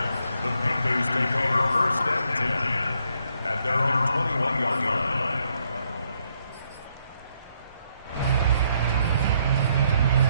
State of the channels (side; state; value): both; inverted; correlation -0.73